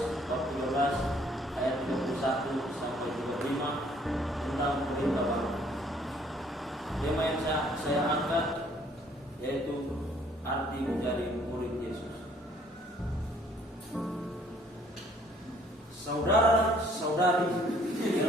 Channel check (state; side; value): normal; both; correlation 0.61